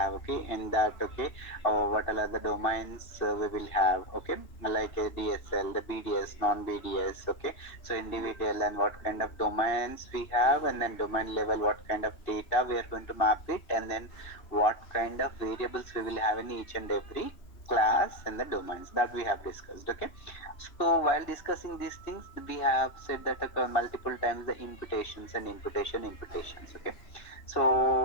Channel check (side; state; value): right; late; 2.6 ms